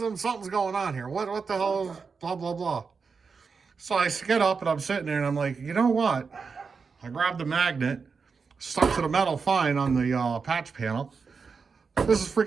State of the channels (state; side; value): quieter; left; 5.2 dB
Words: something's going on here. What the hell is blah, blah, blah. So I get up and I'm sitting there and I'm like, you know what? I grabbed the magnet, stuck to the metal fine on the patch panel. This is